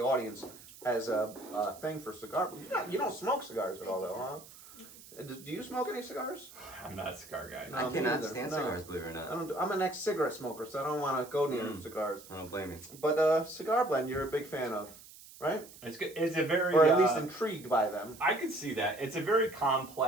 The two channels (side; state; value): right; noise; hiss, 19 dB below the sound